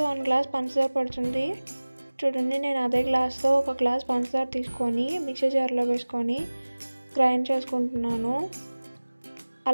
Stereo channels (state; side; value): inverted; both; correlation -1.00